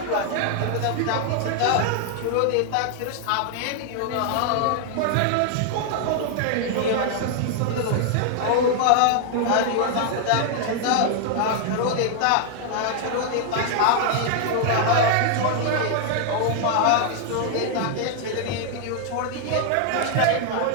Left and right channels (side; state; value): both; different; correlation 0.00